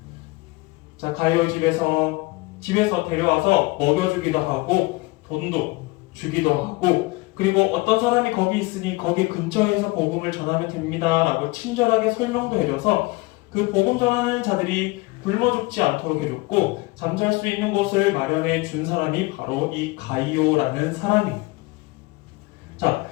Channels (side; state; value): right; quieter; 23.0 dB